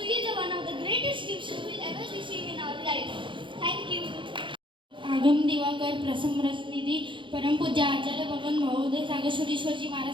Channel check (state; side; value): late; left; 0.24 ms